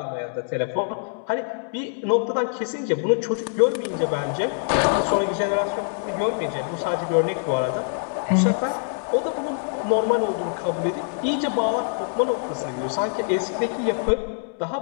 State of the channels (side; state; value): right; silent; 62 dB below the other